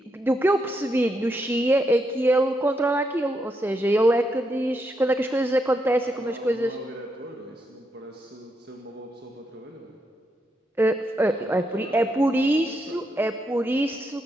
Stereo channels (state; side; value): normal; both; correlation 0.81